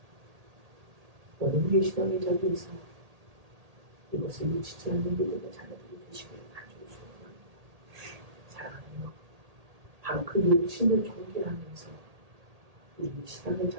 오늘 우리의 신앙의 자리에서 이것을 놓치지 않는 믿음의 자녀들이 되시기를 간절히 소원합니다. 사랑하며 바로 그 욕심을 경계하면서 우리의 신앙의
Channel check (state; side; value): late; left; 1.8 ms